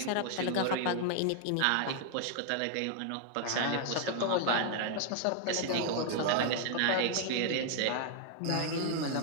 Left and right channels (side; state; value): both; different; correlation 0.00